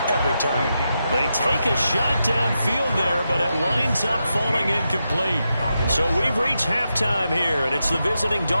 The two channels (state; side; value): inverted; both; correlation -0.87